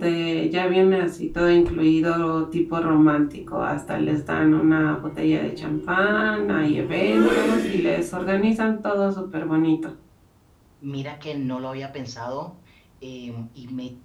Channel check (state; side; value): identical; both; correlation 1.00